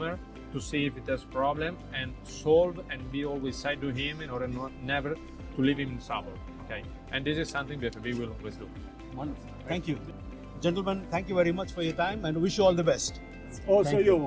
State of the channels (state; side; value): identical; both; correlation 1.00